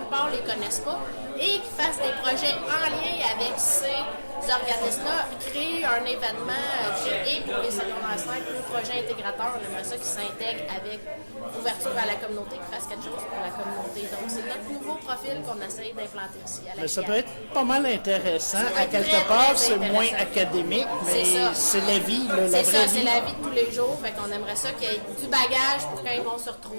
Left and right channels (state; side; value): inverted; both; correlation -1.00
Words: ne les connaissent pas, et qu'ils fassent des projets en lien avec ces organismes-là, créer un événement et pour les secondaires 5, le projet intégrateur, on aimerait ça qu'ils s'intègrent avec ouverture à la communauté, qu'ils fassent quelque chose pour la communauté. Donc, c'est notre nouveau profil qu'on essaye d'implanter ici à la mais ça peut être pas mal intéressant. À quelque part, c'est moins académique, mais c'est la vie, la vraie vie. C'est ça, c'est la vie de tous les jours. Fait qu'on aimerait ça qu'il y ait du bagage pour quand ils vont se